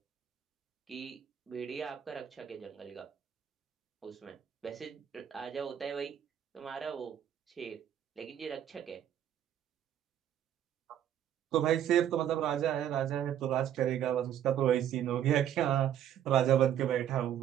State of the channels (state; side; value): quieter; left; 10.4 dB